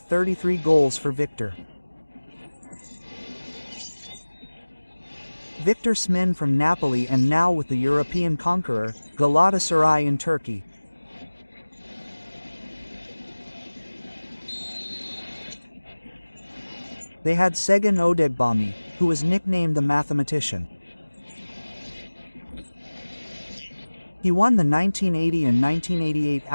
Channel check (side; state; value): both; inverted; correlation -1.00